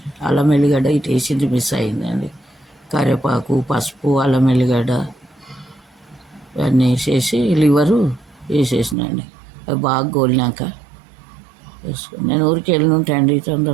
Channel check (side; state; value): left; drops out; at 9.0 s